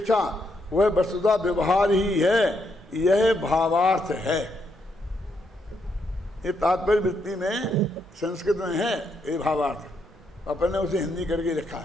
वह वस्तुतः व्यवहार ही है, यह भावार्थ है। ये तात्पर्य वृत्ति में संस्कृत में है ये भावार्थ, अपन ने उसे हिंदी करके लिखा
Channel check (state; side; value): normal; both; correlation 0.78